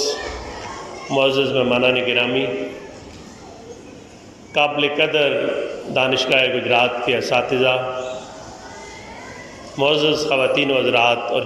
معزز مہمانان گرامی، قابل قدر دانشگاہ گجرات کے اساتذہ، معزز خواتین و حضرات اور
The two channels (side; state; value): both; identical; correlation 1.00